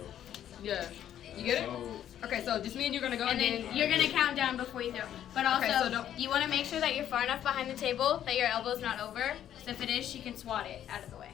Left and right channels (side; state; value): right; quieter; 10.7 dB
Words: Yeah. You get it? Okay, so just me and you're gonna go, And then you're going to count down before you throw. But also, Okay, so don't- you want to make sure that you're far enough behind the table that your elbow's not over. So if it is, she can swat it out of the way.